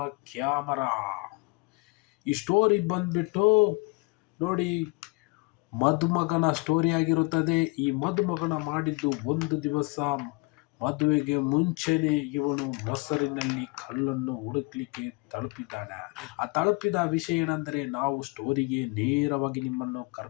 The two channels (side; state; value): right; quieter; 26.7 dB